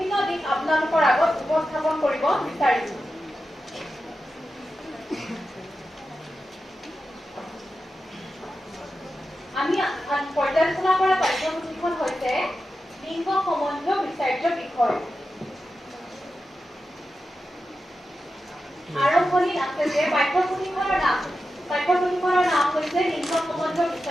দিশ আপোনালোকৰ আগত উপস্থাপন কৰিব বিচাৰিছো। আমি পৰ্যালোচনা কৰা পাঠ্যপুথিখন হৈছে লিংগ সম্বন্ধীয় বিচাৰ্য বিষয়। আৰম্ভণিত আছে যে পাঠ্যপুথিখনৰ নাম হৈছে লিংগ সম্বন্ধীয়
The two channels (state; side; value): normal; both; correlation 0.91